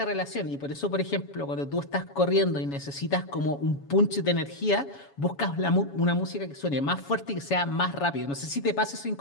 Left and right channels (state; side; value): late; right; 7.2 ms